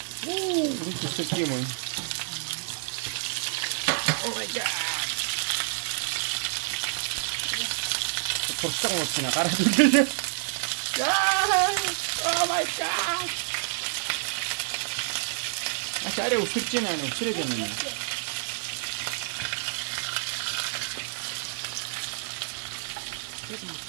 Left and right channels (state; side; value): silent; left; digital silence